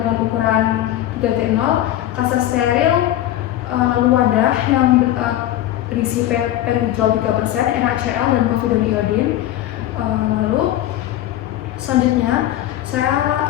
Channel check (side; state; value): right; quieter; 13.3 dB